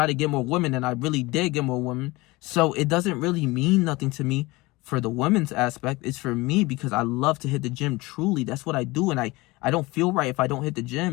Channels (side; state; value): right; quieter; 22.1 dB